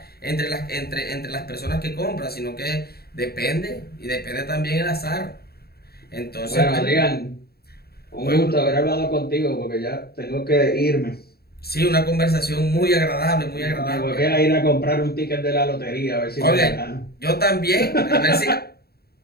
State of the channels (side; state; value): right; late; 0.46 ms